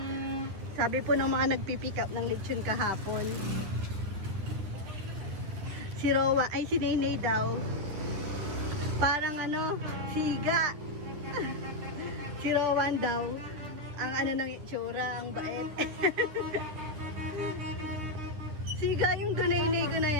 Sabi po ng mga nagpipick up ng lechon kahapon. Si Rowa, ay si Nainay daw. Parang ano, siga. Si Rowan daw. Ang ano ng itsura, ang bait. Siga yung Dunayne ko na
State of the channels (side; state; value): left; late; 10 ms